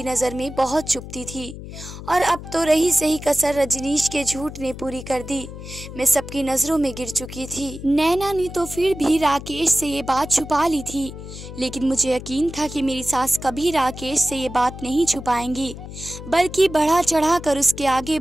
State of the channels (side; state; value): left; noise; hum, 12 dB below the sound